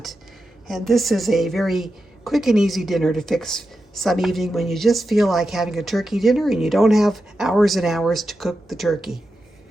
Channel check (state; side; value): normal; both; correlation 0.89